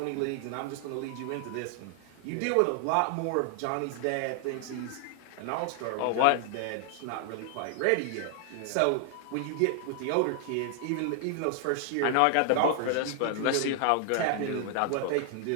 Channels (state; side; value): different; both; correlation 0.00